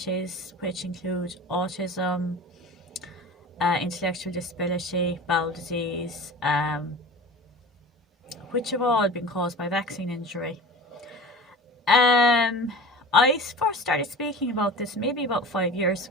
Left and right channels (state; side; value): normal; both; correlation 0.36